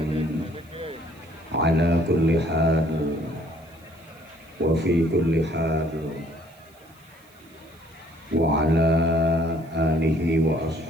ala kulli hal wa fi kulli hal wa ala alihi wa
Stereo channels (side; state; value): right; noise; hiss, 29 dB below the sound